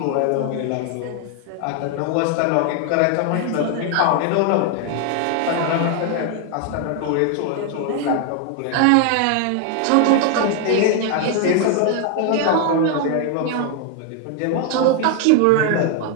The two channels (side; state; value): both; different; correlation 0.00